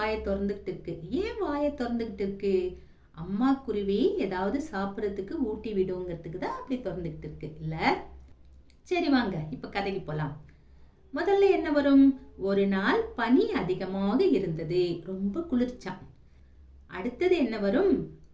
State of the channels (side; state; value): both; identical; correlation 1.00